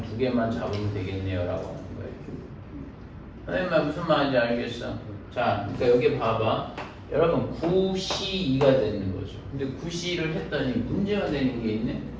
2개만 잡으면 되겠네요라고 하는 거예요. 선생님 말 무슨 말인지 알겠어? 자, 그러니까 여기 봐봐. 여러분 9C2가 되는 거죠. 근데 9C를 했더니 문제가 되는 게 있네.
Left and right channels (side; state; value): both; identical; correlation 1.00